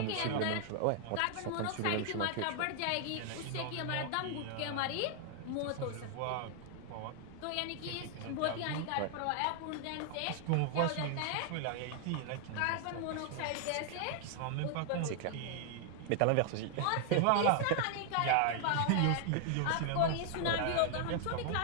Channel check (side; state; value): both; different; correlation 0.00